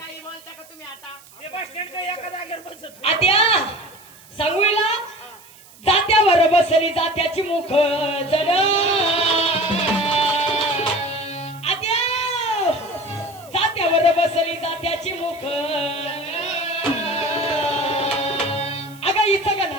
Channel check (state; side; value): noise; right; hiss, 23 dB below the sound